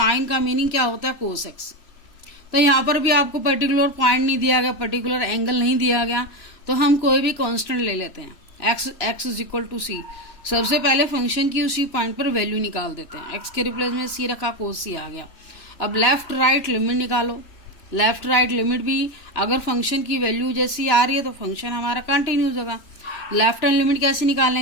का मीनिंग क्या होता है, कोस एक्स. तो यहाँ पर भी आपको पर्टिकुलर पॉइंट नहीं दिया गया, पर्टिकुलर एंगल नहीं दिया गया, तो हम कोई भी कांस्टेंट ले लेते हैं. एक्स इज इक्वल टू सी. सबसे पहले फंक्शन की उसी पॉइंट पर वैल्यू निकाल देते हैं. एक्स के रिप्लेस में सी रखा, कोस सी आ गया. अब लेफ्ट राइट लिमिट निकालो. लेफ्ट राइट लिमिट भी अगर फंक्शन की वैल्यू जैसी आ रही है तो फंक्शन हमारा कंटिन्यूस होगा. लेफ्ट हैंड लिमिट कैसे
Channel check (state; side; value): late; right; 2.9 ms